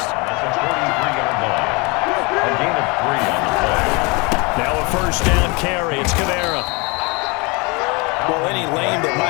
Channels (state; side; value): quieter; right; 28.2 dB